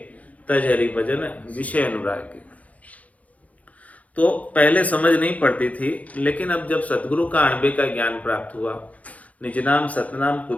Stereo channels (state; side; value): late; right; 0.070 ms